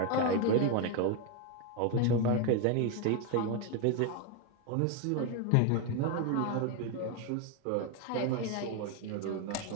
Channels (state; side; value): different; both; correlation 0.02